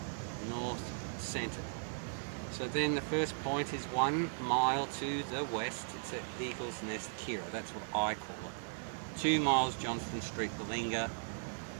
north centre. So then the first point is 1 mile to the west, it's at Eagle's Nest, Kira, that's what I call it. 2 miles Johnston Street, Balinga,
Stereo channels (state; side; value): silent; left; digital silence